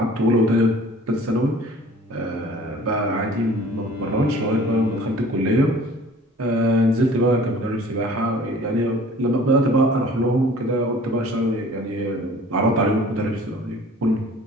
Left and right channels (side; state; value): both; normal; correlation 0.48